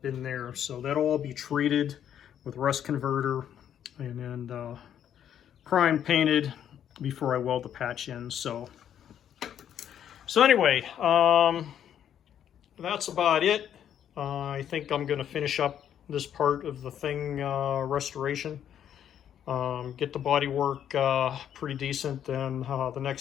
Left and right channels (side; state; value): right; quieter; 9.7 dB